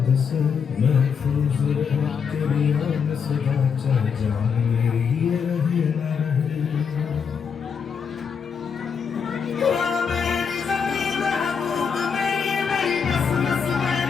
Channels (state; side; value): quieter; right; 6.5 dB